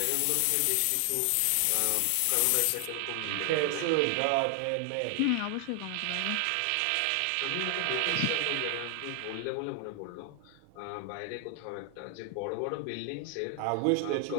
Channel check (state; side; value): different; both; correlation 0.00